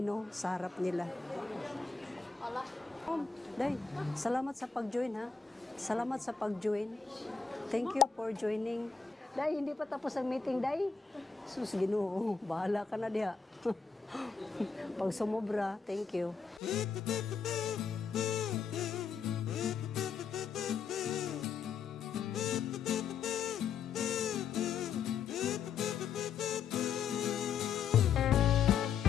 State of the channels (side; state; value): right; quieter; 5.6 dB